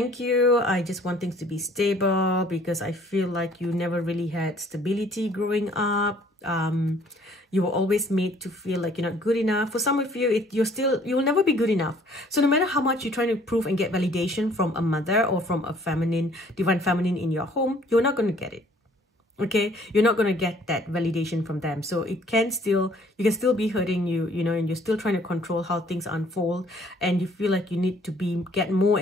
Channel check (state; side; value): normal; both; correlation 0.58